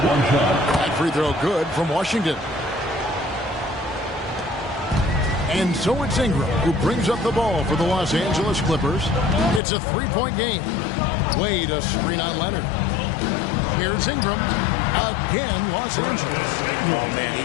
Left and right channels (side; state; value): right; drops out; at 9.6 s